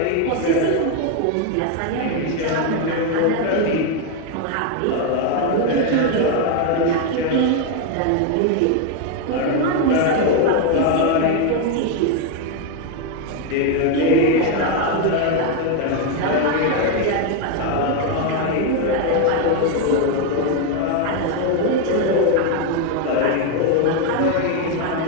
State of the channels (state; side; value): different; both; correlation 0.01